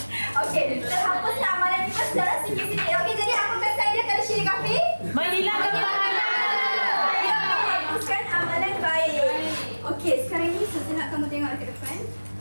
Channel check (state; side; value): inverted; both; correlation -1.00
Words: Okey, terhapuslah amalan kita secara sikit-sikit. Okey, jadi apa kesan dia kalau syirik khafi? Menghilangkan pahala. Ya, menghapuskan amalan baik. Okey, sekarang ni saya nak kamu tengok ke depan.